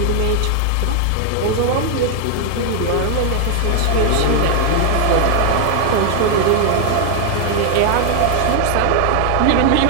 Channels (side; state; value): both; different; correlation 0.00